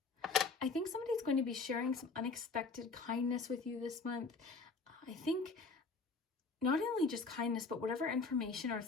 I think somebody's going to be sharing some unexpected kindness with you this month. I think not only just kindness, but whatever information or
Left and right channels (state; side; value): quieter; right; 4.2 dB